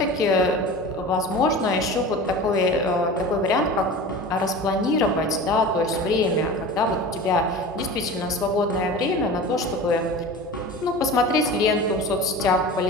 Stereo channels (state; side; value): normal; both; correlation 0.34